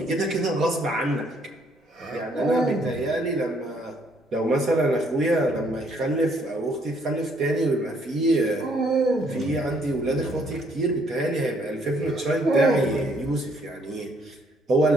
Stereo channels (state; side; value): normal; both; correlation 0.67